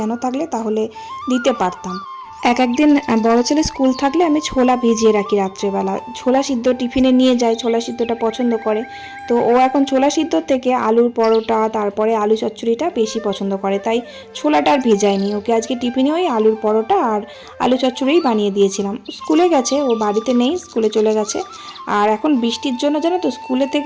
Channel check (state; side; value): identical; both; correlation 1.00